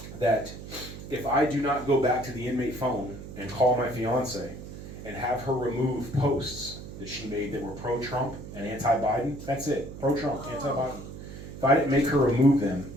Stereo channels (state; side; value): noise; right; hum, 12 dB below the sound